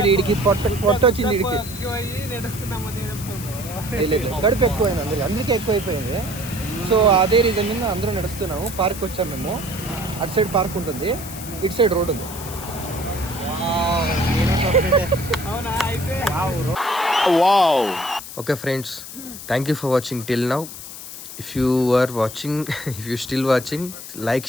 వీడికి పొట్ట వచ్చింది, వీడికి కడుపు ఎక్కువైంది అందరికి, అందుకే ఎక్కువైపోయింది. సో అదే రీజన్ మీద అందరూ నడుస్తున్నాము. పార్క్ వచ్చాము మేము. అటు సైడ్ పార్క్ ఉంటుంది, ఇటు సైడ్ రోడ్ ఉంది. Okay friends, thank you for watching till now. If you still watching, like,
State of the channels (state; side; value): noise; left; hiss, 12 dB below the sound